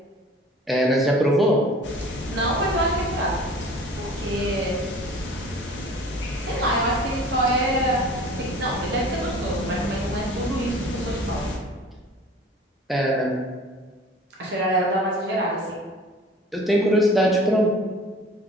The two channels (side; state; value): both; normal; correlation 0.45